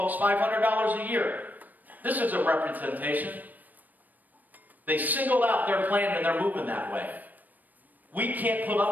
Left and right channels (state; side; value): late; left; 0.084 ms